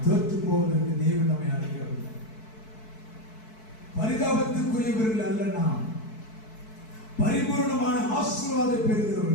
தோற்று போவதற்கு தேவன் நம்மை அழைக்கவில்லை. பரிதாபத்துக்குரியவர்கள் அல்ல, நாம் பரிபூர்ணமான ஆசீர்வாதத்தை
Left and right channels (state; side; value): late; right; 4.6 ms